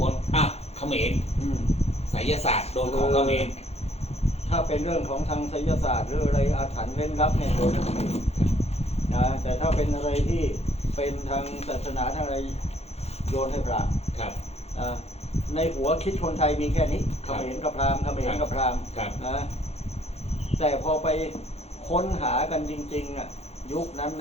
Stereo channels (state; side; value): late; right; 0.31 ms